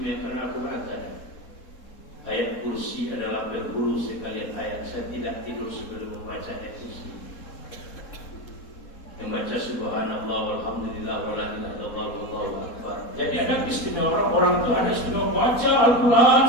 Al-Quran ada. Ayat kursi adalah berbulu sekalian ayat. Saya tidak tidur sebelum membaca ayat kursi. Membaca subhanallah walhamdulillah wala ilaha illallah wallahu akbar. Jadi ada istimewa orang itu ada istimewa baca Al-Quran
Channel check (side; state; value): right; late; 4.2 ms